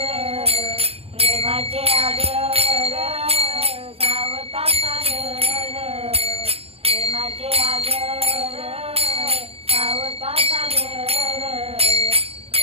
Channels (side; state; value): left; late; 0.29 ms